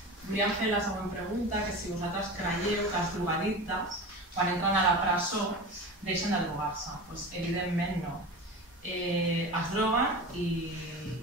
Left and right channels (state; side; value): normal; both; correlation 0.30